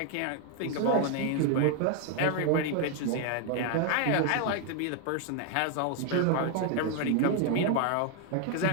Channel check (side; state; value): both; different; correlation 0.00